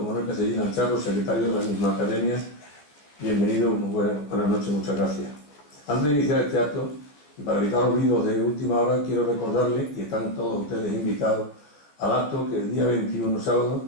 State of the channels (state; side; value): late; right; 14 ms